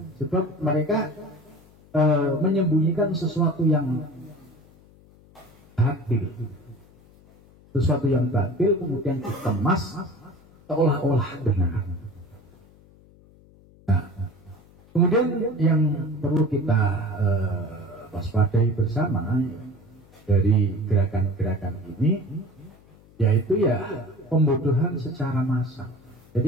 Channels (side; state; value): left; noise; hum, 26 dB below the sound